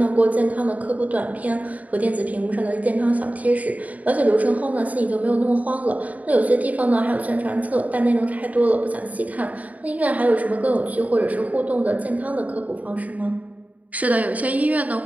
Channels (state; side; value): late; left; 0.072 ms